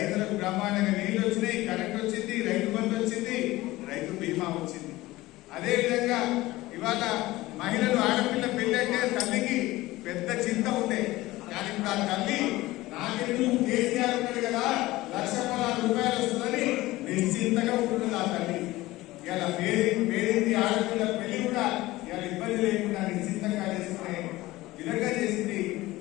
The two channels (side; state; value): right; quieter; 18.4 dB